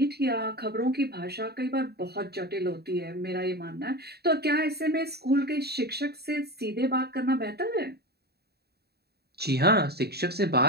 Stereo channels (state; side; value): late; left; 0.47 ms